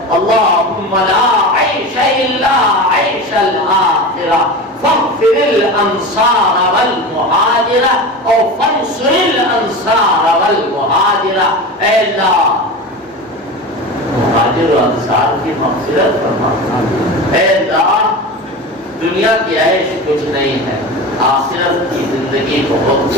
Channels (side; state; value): both; normal; correlation 0.28